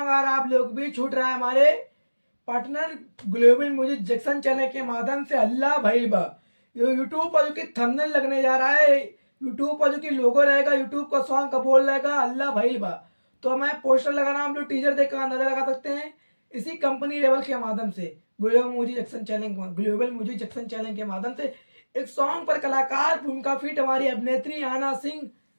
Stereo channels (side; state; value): both; inverted; correlation -1.00